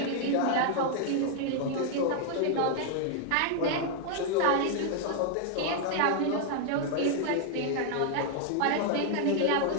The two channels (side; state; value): both; different; correlation 0.00